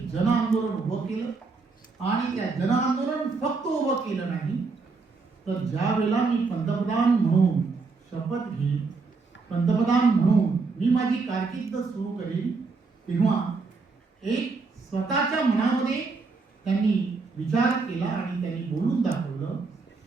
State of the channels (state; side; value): quieter; left; 4.3 dB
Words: जन आंदोलन उभं केलं. आणि त्या जन आंदोलन फक्त उभं केलं नाही तर ज्या वेळेला मी पंतप्रधान म्हणून शपथ घेईन, पंतप्रधान म्हणून मी माझी कारकीर्द सुरू करेन, तेव्हा एक स्वतःच्या मनामध्ये त्यांनी विचार केला आणि त्यांनी बोलून दाखवलं,